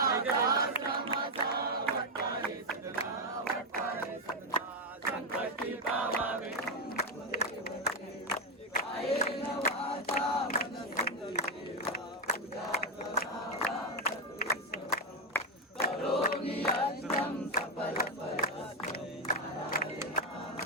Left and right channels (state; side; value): normal; both; correlation 0.05